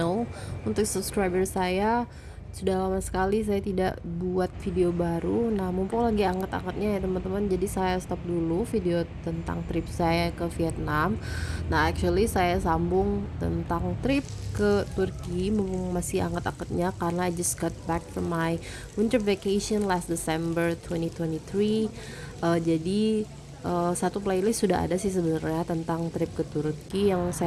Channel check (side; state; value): both; identical; correlation 1.00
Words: Untuk subscriber saya, sudah lama sekali saya tidak buat video baru. Nah, mumpung lagi angkat-angkatnya ya teman-teman. Jadi saya stop dulu video tentang trip saya ke Vietnam. Nah, actually saya sambung tentang trip ke Turki mumpung masih angkat-angkatnya karena I just got back from my winter vacation last December 2023. Jadi satu playlist sudah ada sih sebenarnya tentang trip ke Turki yang